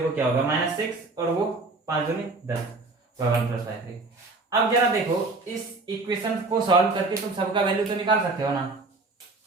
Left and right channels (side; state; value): left; quieter; 3.5 dB